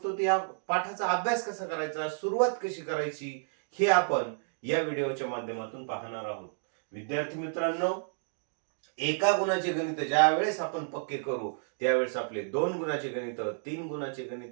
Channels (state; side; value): silent; left; digital silence